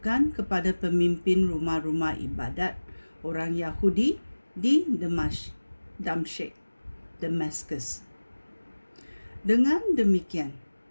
kepada pemimpin rumah-rumah ibadat orang Yahudi di Damaskus. Dengan demikian,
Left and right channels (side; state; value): both; inverted; correlation -1.00